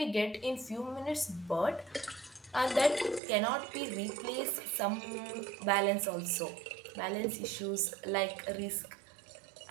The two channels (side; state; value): left; drops out; at 3.2 s